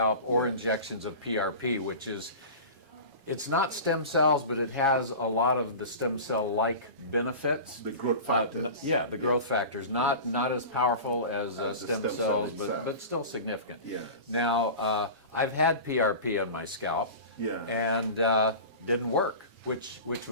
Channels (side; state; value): left; late; 7.2 ms